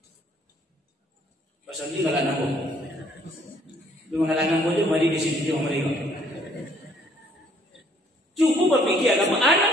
Pasal ini enggak anakku. Lu mengalahkan bojo mari di sini dia mereka. Cukup berpikir agama anak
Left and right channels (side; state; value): both; normal; correlation 0.63